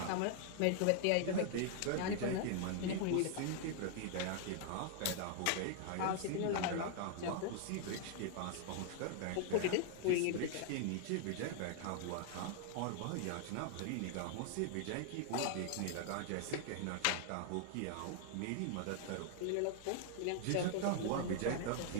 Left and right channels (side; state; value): both; different; correlation 0.00